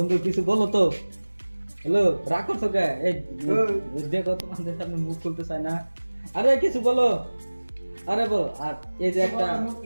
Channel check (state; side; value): inverted; both; correlation -1.00